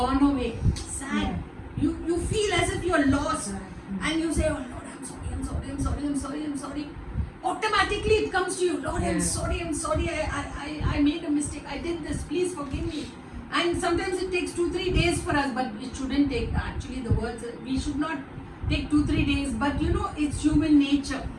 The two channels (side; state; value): both; identical; correlation 1.00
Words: away. Sad. You feel as if you're lost. And you say, oh Lord, I'm sorry. Automatically it comes to you, Lord, I'm sorry, I made a mistake, I did this, please forgive me. And sometimes it takes 2-3 days for us, but it shouldn't take, actually the words, we should not take 2-3 days, but you know, it's human nature.